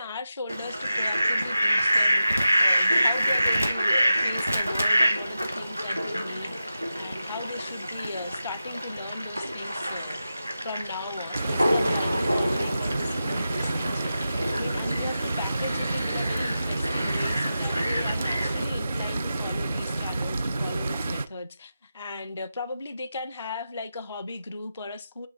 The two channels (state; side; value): inverted; both; correlation -0.91